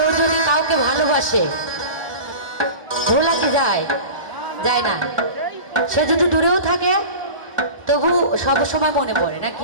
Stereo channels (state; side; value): late; left; 1.2 ms